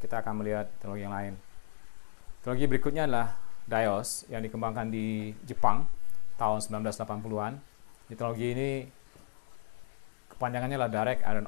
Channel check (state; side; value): silent; right; digital silence